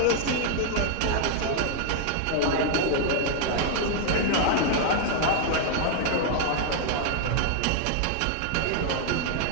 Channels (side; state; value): both; different; correlation -0.01